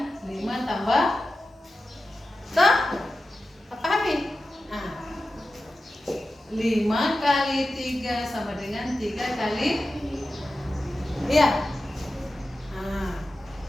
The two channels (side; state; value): both; normal; correlation 0.93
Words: 5 tambah pahami? 5 kali 3 sama dengan 3 kali, iya.